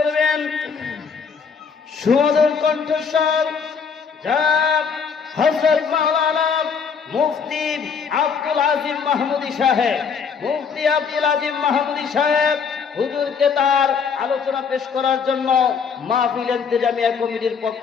সুমধুর কণ্ঠস্বর জনাব হযরত মাওলানা মুফতি আব্দুল আজিম মাহমুদী সাহেব। মুফতি আব্দুল আজিম মাহমুদী সাহেব হুজুরকে তার আলোচনা পেশ করার জন্য মাহফিল ইন্তেজামিয়া কমিটির পক্ষ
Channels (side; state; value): right; quieter; 6.1 dB